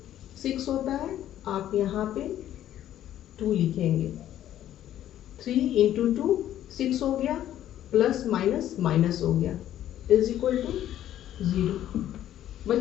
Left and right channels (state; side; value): quieter; right; 12.0 dB